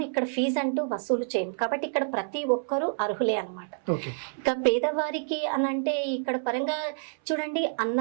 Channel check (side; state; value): left; silent; 59 dB below the other